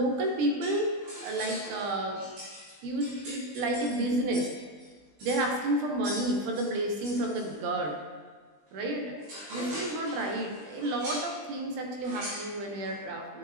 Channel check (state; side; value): late; left; 20 ms